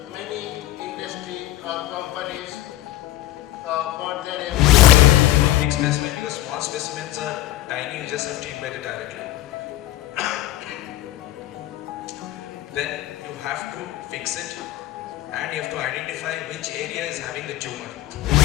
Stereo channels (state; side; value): quieter; right; 14.6 dB